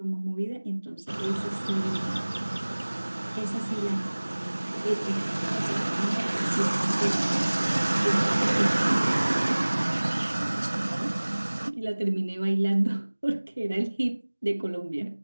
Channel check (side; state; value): both; inverted; correlation -1.00